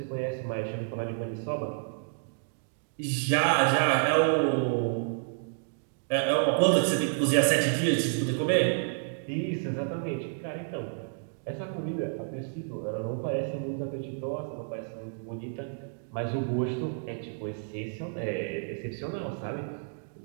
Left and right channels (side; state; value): left; silent; digital silence